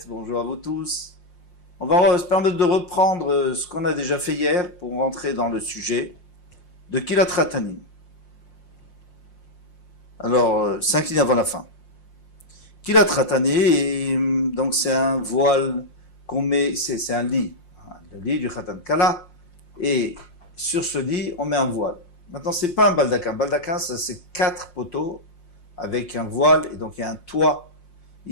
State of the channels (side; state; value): right; late; 5.6 ms